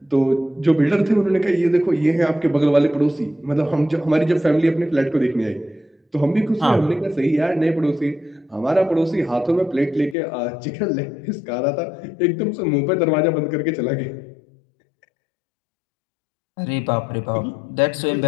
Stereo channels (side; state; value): right; drops out; at 10.2 s